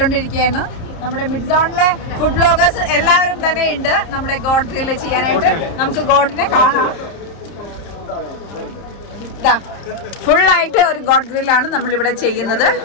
നമ്മുടെ മിഡ് സോണിലെ ഫുഡ് ബ്ലോഗേഴ്സ് എല്ലാവരും തന്നെ ഉണ്ട് നമ്മുടെ ഗോഡ് ഗ്രില്ല് ചെയ്യാനായിട്ട്. നമുക്ക് ഗോഡിനെ കാണാം. ഫുള്ളായിട്ട് ഒരു ഗോഡ് ഗ്രില്ലാണ് നമ്മളിവിടെ ചെയ്യുന്നത്.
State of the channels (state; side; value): late; right; 31 ms